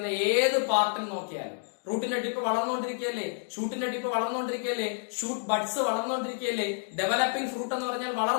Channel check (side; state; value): right; silent; digital silence